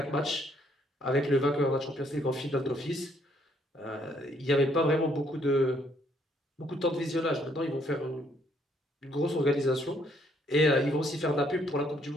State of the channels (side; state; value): both; normal; correlation 0.68